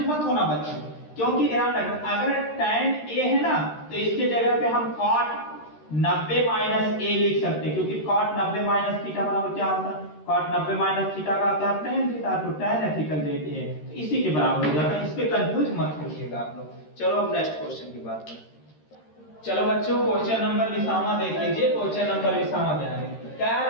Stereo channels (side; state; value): right; late; 13 ms